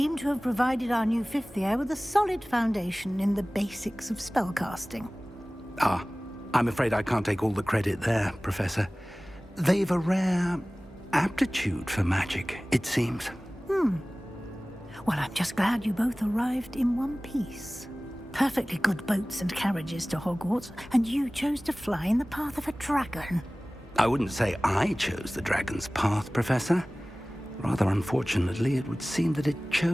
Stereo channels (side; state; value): both; normal; correlation 0.98